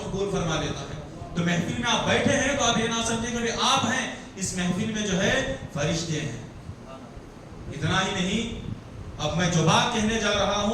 فرما دیتا ہے. تو محفل میں آپ بیٹھے ہیں تو آپ یہ نہ سمجھیں کہ آپ ہیں, اس محفل میں جو ہے فرشتے ہیں. اتنا ہی نہیں, اب میں جو بات کہنے جا رہا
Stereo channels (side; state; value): both; identical; correlation 1.00